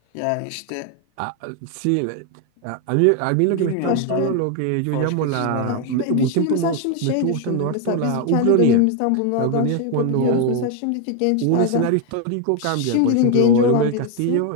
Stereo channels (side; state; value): both; different; correlation 0.01